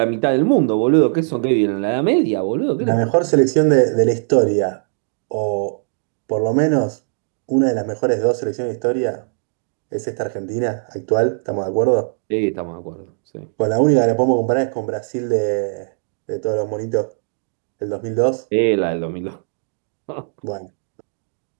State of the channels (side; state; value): left; silent; digital silence